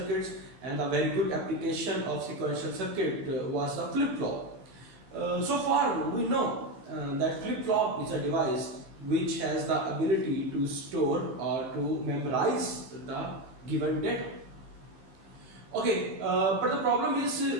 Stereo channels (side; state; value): left; late; 15 ms